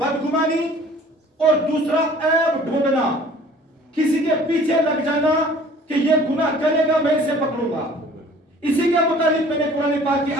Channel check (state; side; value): normal; both; correlation 0.50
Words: और दूसरा ऐब ढूंढना, किसी के पीछे लग जाना कि ये गुनाह करेगा मैं इसे पकड़ूंगा। इसी के मुताबिक मैंने कुरान पाक की